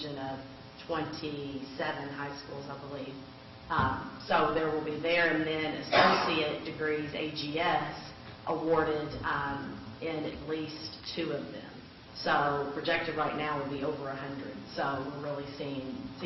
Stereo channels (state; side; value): identical; both; correlation 1.00